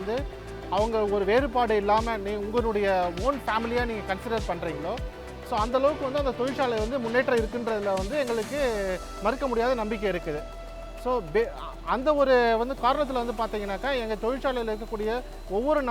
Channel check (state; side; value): identical; both; correlation 1.00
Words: அவங்க ஒரு வேறுபாடு இல்லாமல் உங்களுடைய ஓன் ஃபேமிலியாக நீங்கள் கன்சிடர் பண்ணுறீங்களோ, ஸோ அந்தளவுக்கு வந்து அந்த தொழிற்சாலை வந்து முன்னேற்றம் இருக்குன்றதில் வந்து எங்களுக்கு மறுக்க முடியாத நம்பிக்கை இருக்குது. ஸோ அந்த ஒரு வந்து காரணத்தில் வந்து பார்த்தீங்கன்னாக்கா எங்கள் தொழிற்சாலையில் இருக்கக்கூடிய ஒவ்வொரு